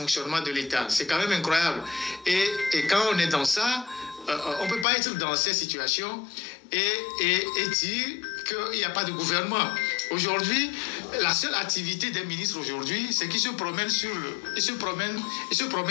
de l'État. C'est quand même incroyable. Et quand on est dans ça, on ne peut pas être dans cette situation et dire qu'il n'y a pas de gouvernement. Aujourd'hui, la seule activité des ministres aujourd'hui, c'est qu'ils se promènent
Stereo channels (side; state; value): right; drops out; at 4.9 s